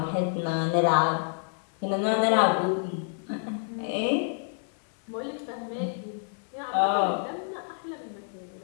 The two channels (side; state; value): right; silent; 59 dB below the other